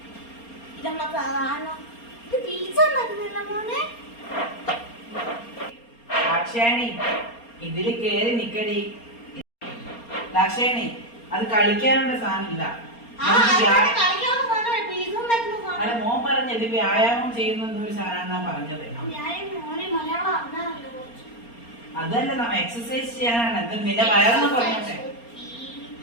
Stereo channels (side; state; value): right; late; 4.3 ms